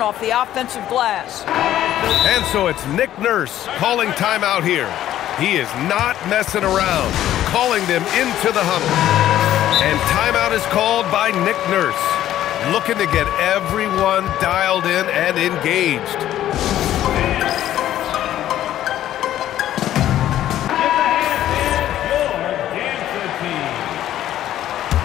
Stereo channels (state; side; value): quieter; right; 12.5 dB